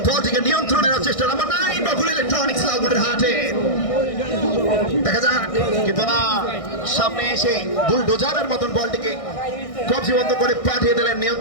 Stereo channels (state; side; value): late; right; 1.6 ms